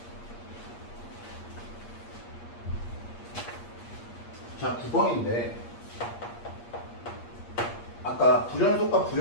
자, 9번인데 아까 불연속과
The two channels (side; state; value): right; late; 8.5 ms